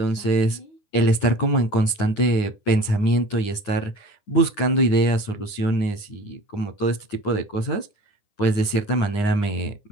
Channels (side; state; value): right; late; 9.7 ms